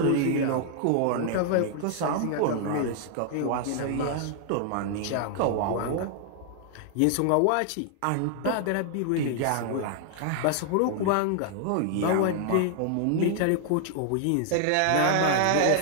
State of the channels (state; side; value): different; both; correlation 0.00